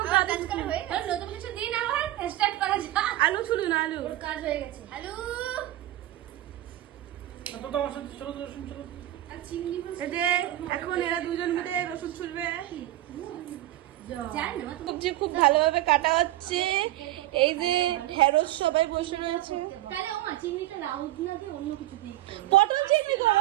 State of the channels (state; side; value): quieter; left; 15.1 dB